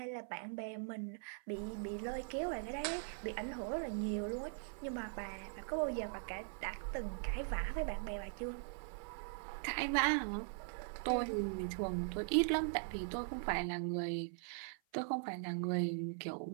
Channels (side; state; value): left; silent; 50 dB below the other